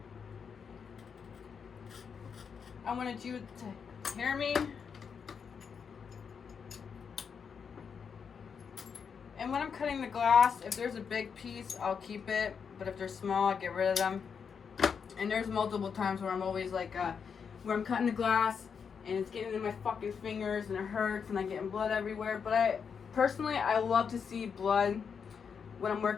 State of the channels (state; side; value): quieter; right; 6.5 dB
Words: I wanted you to hear me. And when I'm cutting the glass, if there's a big piece, I'll keep it. But if they're small, I'll get rid of them. And there's multiple times where I'm always like, where I'm cutting the glass and it's getting in my fucking fingers and it hurts and I'm getting blood everywhere. But personally, I love to see blood when I'm